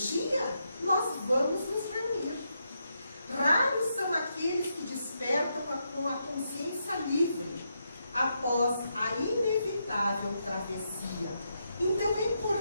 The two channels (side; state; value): both; inverted; correlation -0.82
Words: nós vamos nos reunir. Raros são aqueles que despertam com a consciência livre após a inevitável travessia. Então é